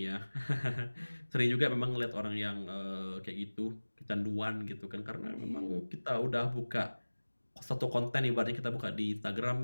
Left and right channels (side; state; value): both; inverted; correlation -1.00